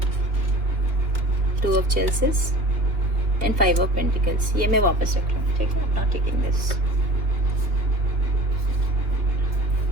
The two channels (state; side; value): late; left; 3.4 ms